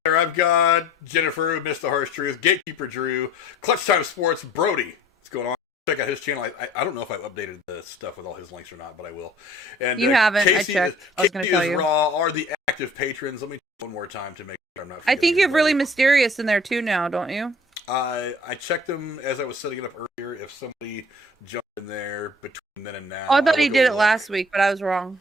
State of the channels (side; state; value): both; normal; correlation 0.50